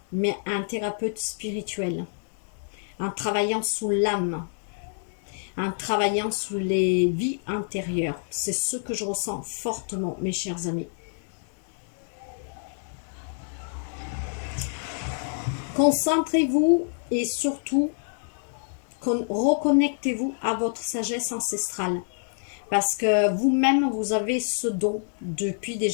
mais un thérapeute spirituel. En travaillant sous l'âme, en travaillant sous les vies intérieures. C'est ce que je ressens fortement, mes chers amis. Concentrez-vous et surtout reconnectez-vous à votre sagesse ancestrale. Parce que vous-même, vous avez ce don depuis des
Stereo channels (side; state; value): right; silent; digital silence